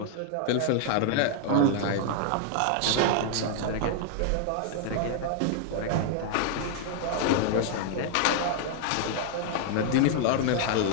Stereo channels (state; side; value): different; both; correlation -0.01